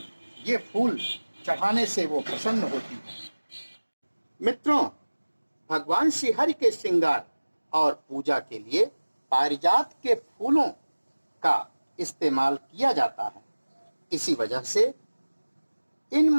ये फूल चढ़ाने से वो प्रसन्न होती है। मित्रों, भगवान श्रीहरि के श्रृंगार और पूजा के लिए पारिजात के फूलों का इस्तेमाल किया जाता है। इसी वजह से इन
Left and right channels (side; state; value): both; inverted; correlation -1.00